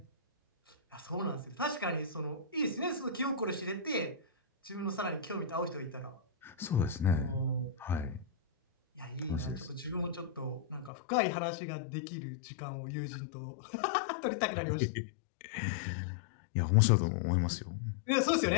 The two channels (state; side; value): drops out; right; at 10.9 s